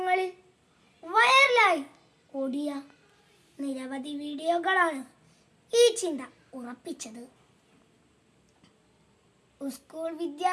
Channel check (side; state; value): both; identical; correlation 1.00